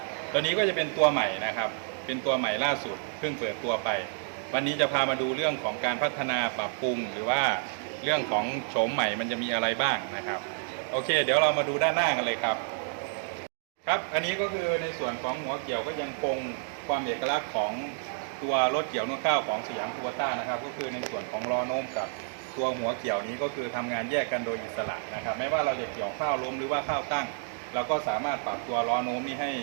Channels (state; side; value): silent; left; digital silence